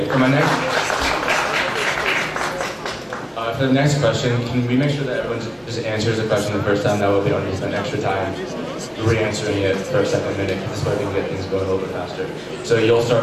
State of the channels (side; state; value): both; identical; correlation 1.00